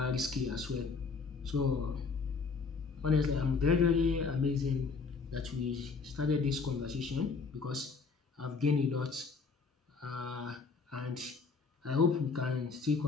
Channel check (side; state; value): right; quieter; 4.8 dB